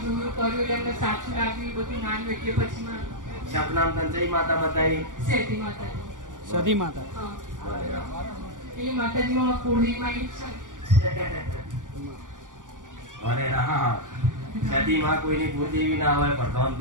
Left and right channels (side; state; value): left; late; 0.88 ms